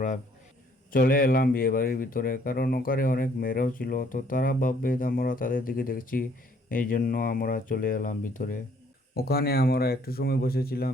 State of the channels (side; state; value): both; normal; correlation 0.63